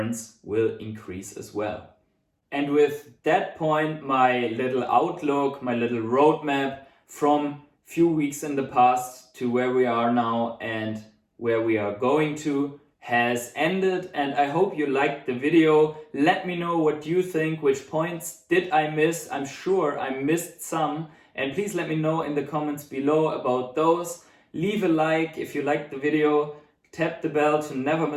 will increase as well. And with that point, my little outlook, my little roadmap from few weeks in the past to where we are now and where we are going to has ended, and I hope you liked the video. Let me know what you think, which points did I miss. I'm sure I missed some, and please let me know in the comments below about those. Leave a like if you liked the video, tap the bell to never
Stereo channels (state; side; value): identical; both; correlation 1.00